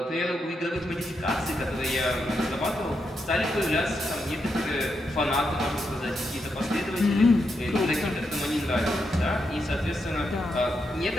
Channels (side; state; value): both; normal; correlation 0.83